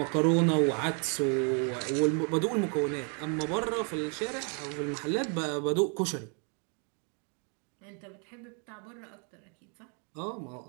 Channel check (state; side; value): quieter; left; 38.6 dB